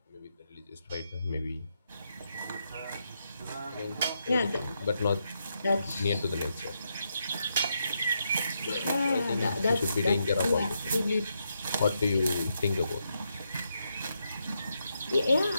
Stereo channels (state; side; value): inverted; both; correlation -0.82